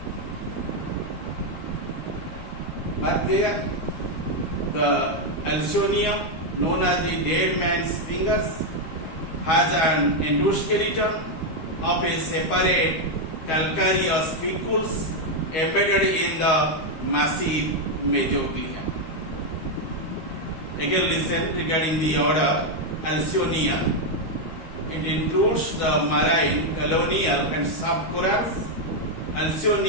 Mark there the Alcyonium, known as the dead man's fingers, has an endoskeleton of a separate calcareous spicules embedded in the massive mesoglea. Again listen regarding the order Alcyonea. It includes the marine, colonial, and soft corals.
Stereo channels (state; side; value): late; right; 12 ms